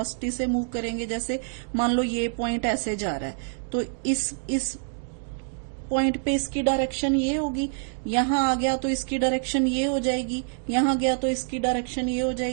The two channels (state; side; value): silent; left; digital silence